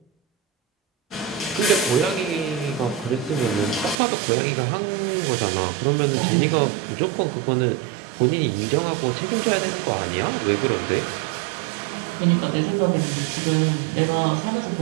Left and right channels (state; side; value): drops out; left; at 4.0 s